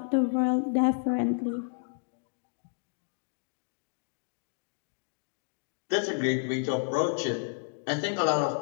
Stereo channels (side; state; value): right; silent; digital silence